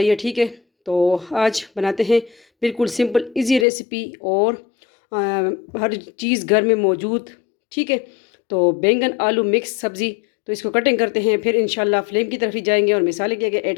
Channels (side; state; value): right; drops out; at 3.7 s